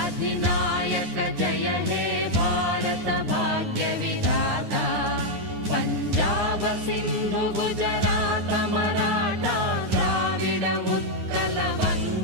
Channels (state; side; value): late; left; 9.6 ms